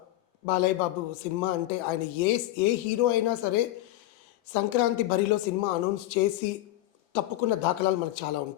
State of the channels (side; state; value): right; quieter; 15.9 dB